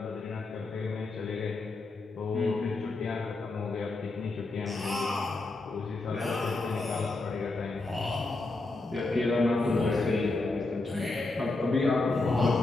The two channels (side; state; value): right; quieter; 3.3 dB